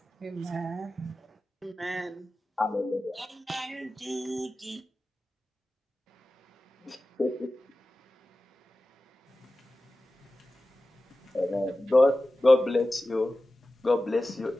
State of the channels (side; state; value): both; normal; correlation 0.95